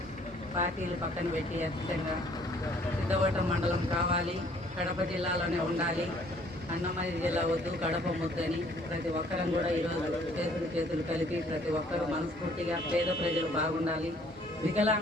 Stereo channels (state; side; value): normal; both; correlation 0.60